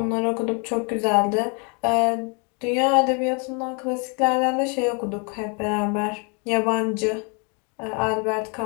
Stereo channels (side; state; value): right; quieter; 34.9 dB